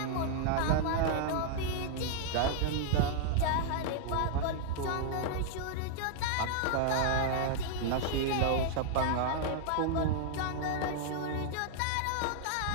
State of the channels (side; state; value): both; different; correlation -0.01